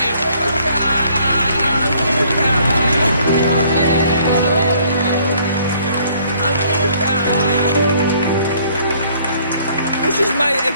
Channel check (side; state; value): both; inverted; correlation -0.61